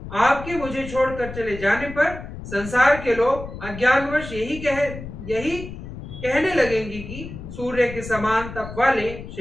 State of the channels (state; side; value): noise; left; rumble, 11 dB below the sound